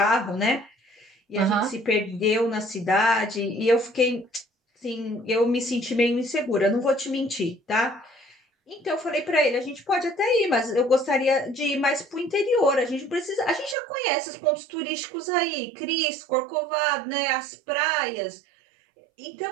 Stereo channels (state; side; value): drops out; left; at 13.8 s